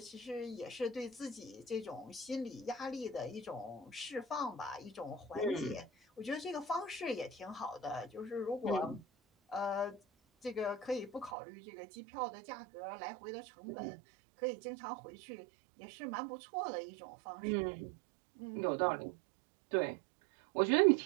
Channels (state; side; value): drops out; left; at 11.3 s